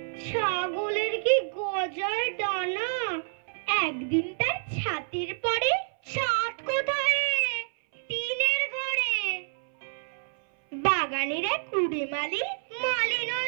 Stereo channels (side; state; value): left; silent; 59 dB below the other